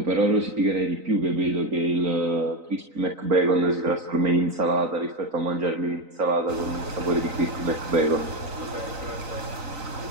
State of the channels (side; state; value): left; late; 3.9 ms